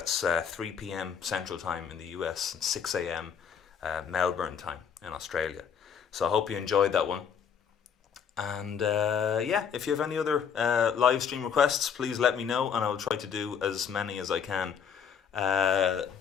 3 p.m. Central Time in the US and 6 a.m. Melbourne time in Australia. So I hope you enjoyed that one. And if you have any other live stream requests, please let me know, and I will try to do as many as I can.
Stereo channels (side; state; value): right; quieter; 7.4 dB